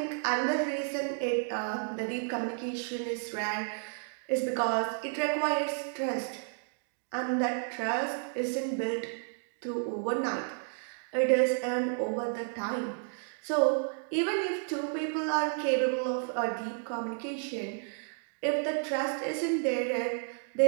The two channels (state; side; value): silent; left; 57 dB below the other